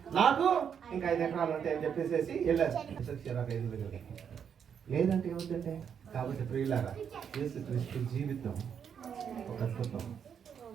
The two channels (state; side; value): quieter; left; 7.7 dB